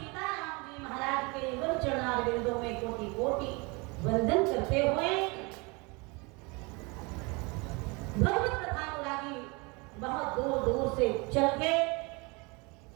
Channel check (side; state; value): left; quieter; 28.2 dB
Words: जी महाराज के युगल चरणारविंदों में कोटि कोटि वंदन करते हुए भगवत कथा अनुरागी बहुत दूर दूर से चल के